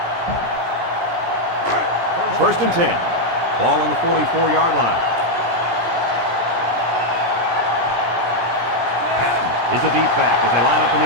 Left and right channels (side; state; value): left; late; 17 ms